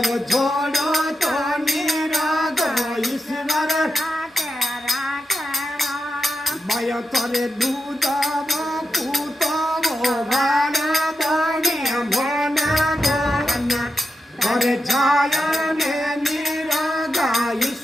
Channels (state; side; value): normal; both; correlation 0.88